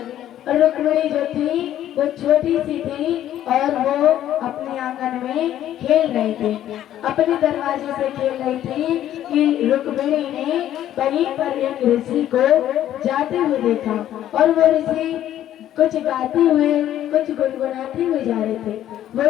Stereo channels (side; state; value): right; quieter; 11.9 dB